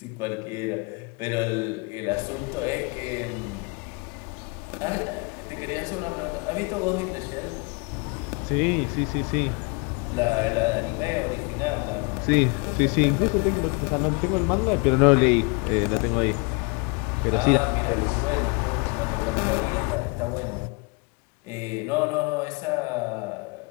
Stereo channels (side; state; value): right; quieter; 30.7 dB